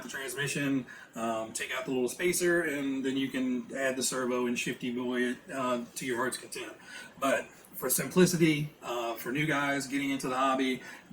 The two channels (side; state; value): both; identical; correlation 1.00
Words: the transmission, take out the little spacer, and then you can add the servo and shifty boy it to your heart's content. But for simplicity, for new guys getting into the hobby,